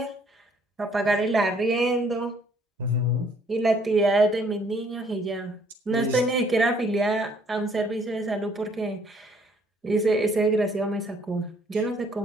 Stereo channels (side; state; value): both; normal; correlation 0.63